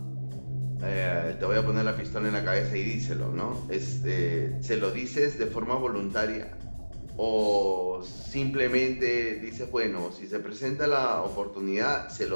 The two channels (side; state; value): both; inverted; correlation -1.00